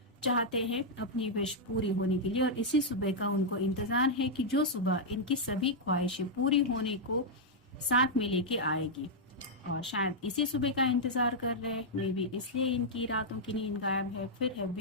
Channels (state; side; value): normal; both; correlation -0.05